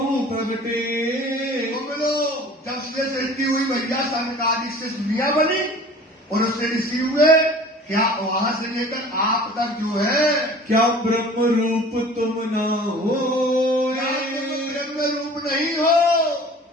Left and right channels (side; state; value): both; normal; correlation 0.45